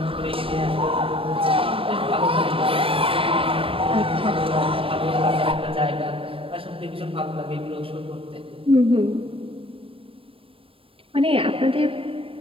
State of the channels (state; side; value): late; left; 0.26 ms